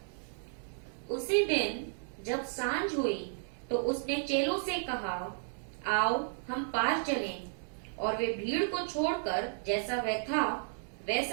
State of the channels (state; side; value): silent; left; digital silence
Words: उसी दिन जब सांझ हुई तो उसने चेलों से कहा, आओ हम पार चलें। और वे भीड़ को छोड़कर जैसा वह था